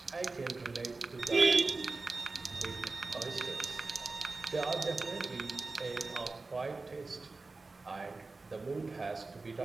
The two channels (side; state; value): left; quieter; 3.7 dB